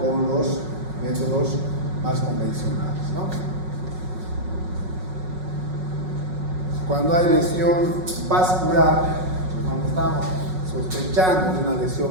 los métodos más convencionales, ¿no? Cuando hay lesión vascular, cuando estamos sospechando de una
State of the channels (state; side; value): late; left; 5.4 ms